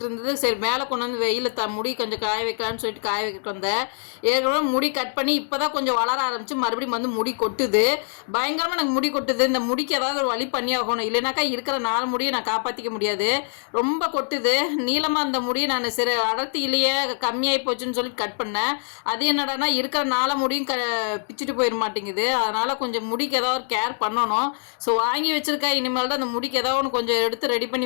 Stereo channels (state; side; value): silent; right; 63 dB below the other